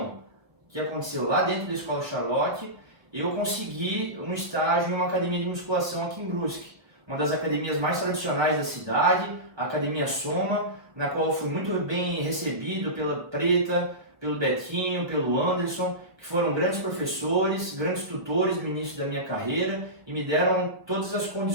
que aconteceu lá dentro da Escola Charlotte, eu consegui um estágio em uma academia de musculação aqui em Brusque, uma das academias mais tradicionais da cidade, a Academia Soma, na qual fui muito bem recebido pela Preta, pelo Betinho, pelo Anderson, que foram grandes professores, grandes tutores no início da minha carreira e me deram todas as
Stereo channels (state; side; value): late; left; 1.0 ms